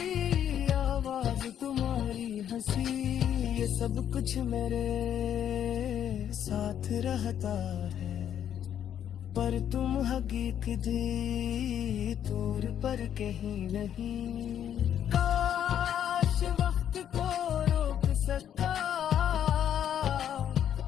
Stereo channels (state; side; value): quieter; right; 9.7 dB